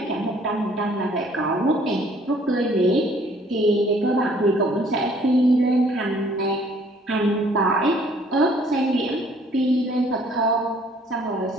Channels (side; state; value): both; normal; correlation 0.59